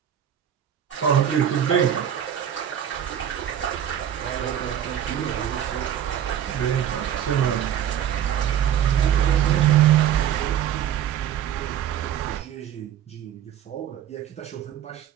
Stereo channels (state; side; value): quieter; left; 10.1 dB